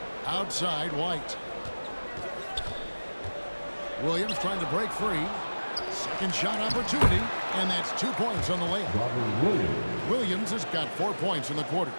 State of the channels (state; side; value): inverted; both; correlation -1.00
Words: Outside, White. Williams trying to break free. Second shot opportunity, and that's 2 points on the layup. Williams has got 4 points in the quarter.